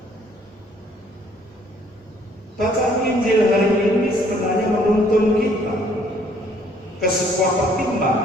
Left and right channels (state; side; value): normal; both; correlation 0.62